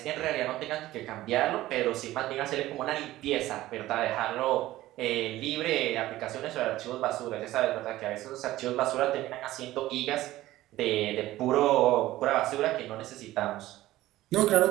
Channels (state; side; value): quieter; left; 15.9 dB